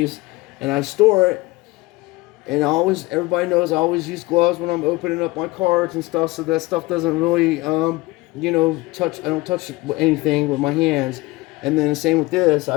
and I store it. And everybody knows I always use gloves when I'm opening up my cards and stuff, so that stuff doesn't really, touch. I don't touch anything with my hands. And then the same with this.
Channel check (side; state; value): right; quieter; 21.1 dB